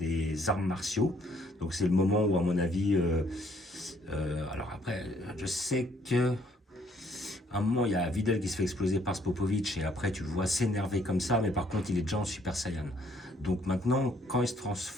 arts martiaux. Donc c'est le moment où, à mon avis, alors après, je sais que à un moment, il y a Videl qui se fait exploser par Spopovic et après, tu le vois s'énerver comme ça, mais par contre, il est déjà en Super Saiyan. Donc maintenant, quand il se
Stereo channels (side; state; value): both; normal; correlation 0.65